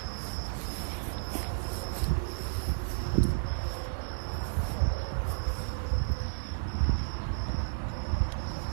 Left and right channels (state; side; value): silent; left; digital silence